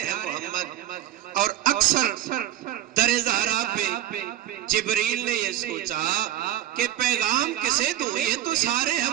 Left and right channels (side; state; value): left; quieter; 12.5 dB